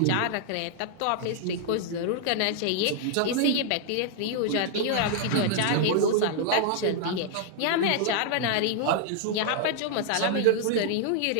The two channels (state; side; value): different; both; correlation 0.00